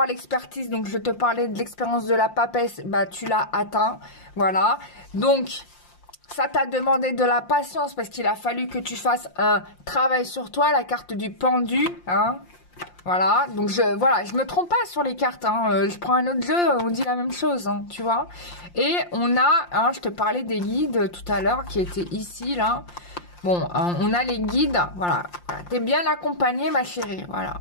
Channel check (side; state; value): right; late; 5.7 ms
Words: l'expertise, donc je te parlais de l'expérience de la papesse, bah tu l'as atteint, voilà. Donc ça t'a demandé de la patience parce qu'il a fallu que tu fasses un travail sur toi, la carte du pendu, hein. Voilà, donc je me trompe pas sur les cartes, hein. Je prends un autre jeu, on dit la même chose, hein, tu vois. Et on a, hein, je te parlais des guides tout à l'heure qui étaient ici, là. Bon, on a les guides, voilà. T'es bien accompagnée, ma chérie, voilà,